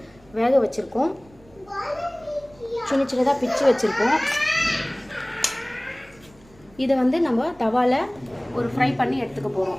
வேக வச்சுருக்கோம். சின்ன சின்னதாக பிச்சு வச்சுருக்கோம். இதை வந்து நம்ம தவாவில் ஒரு ஃப்ரை பண்ணி எடுத்துக்க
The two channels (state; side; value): noise; right; rumble, 27 dB below the sound